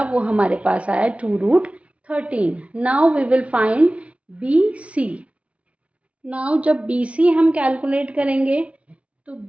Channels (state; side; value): late; left; 0.063 ms